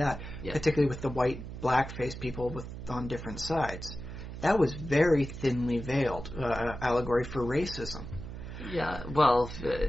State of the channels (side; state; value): right; noise; hum, 10 dB below the sound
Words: particularly with the white, black-face people on different sides. That was very thinly veiled allegory for racism. Yeah, well,